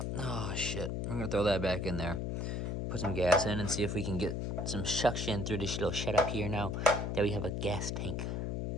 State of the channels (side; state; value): left; noise; hum, 1 dB below the sound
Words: oh shit, I'm gonna throw that back in there. Put some gas in and see if we can get some suction through this little shut up here now that we have a gas tank.